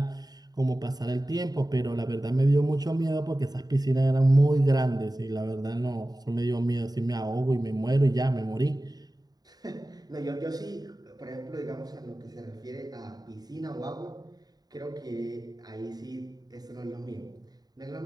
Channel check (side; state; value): left; late; 0.19 ms